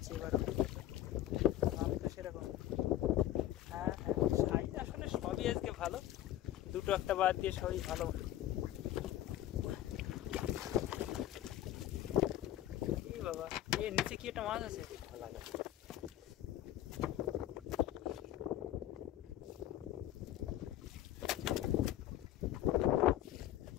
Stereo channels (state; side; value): quieter; right; 13.2 dB